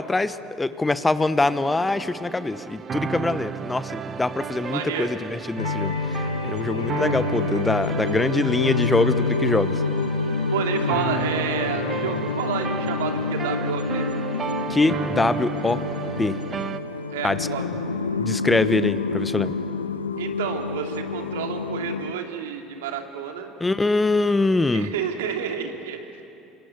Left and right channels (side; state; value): both; normal; correlation 0.37